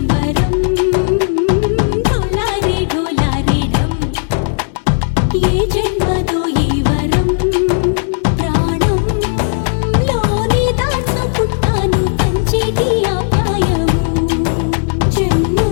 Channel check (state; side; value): silent; right; digital silence